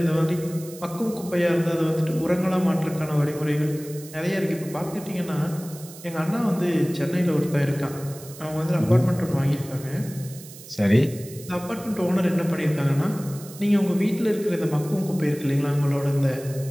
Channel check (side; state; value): right; noise; hiss, 17 dB below the sound